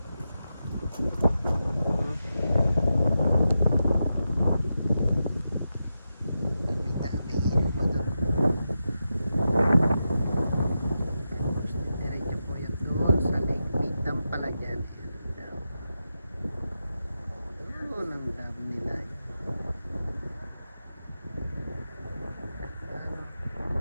Dami-dami ilog pa doon. Tapos diretso po yun doon sa Lake Midam pala dyan. Yun ang dam nila yun.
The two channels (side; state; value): both; inverted; correlation -0.89